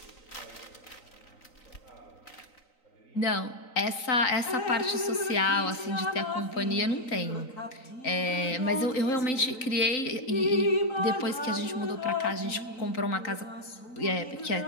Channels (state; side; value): late; right; 3.9 ms